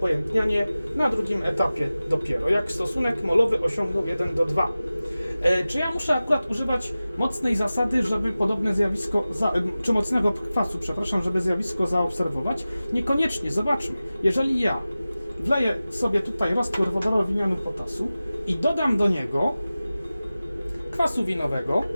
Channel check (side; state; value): both; inverted; correlation -0.96